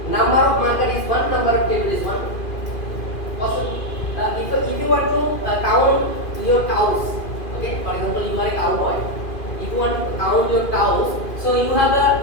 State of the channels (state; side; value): late; right; 2.4 ms